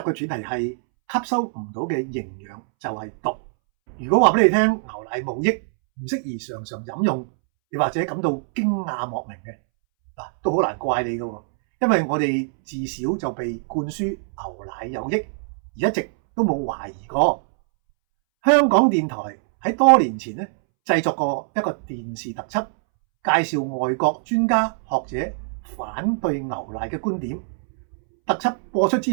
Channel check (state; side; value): silent; left; 63 dB below the other